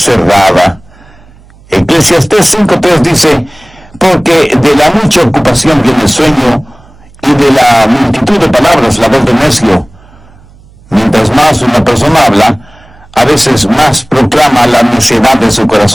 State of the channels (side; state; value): right; noise; hum, 27 dB below the sound